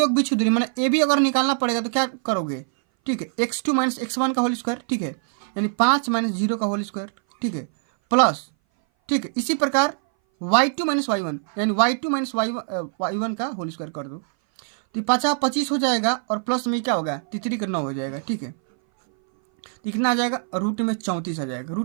के बीच की दूरी मैंने ए बी अगर निकालना पड़ेगा तो क्या करोगे, ठीक है, x2 - x1 का होल स्क्वायर, ठीक है, यानी 5 - 0 का होल स्क्वायर, ठीक है, प्लस, ठीक है, इसी प्रकार y2 - y1 यानी y2 - y1 का होल स्क्वायर कर दो। तो 25 हो जाएगा और प्लस में क्या होगा, 3 का 9 हो जाएगा। ठीक है, कितना आ जाएगा, रूट में 34 आ जाएगा,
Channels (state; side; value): silent; left; 59 dB below the other